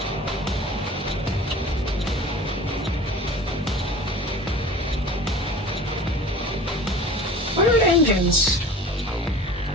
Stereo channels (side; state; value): both; normal; correlation 0.41